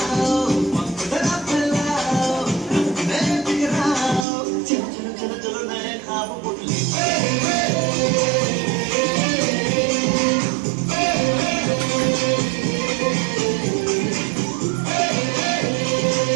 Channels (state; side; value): drops out; left; at 4.2 s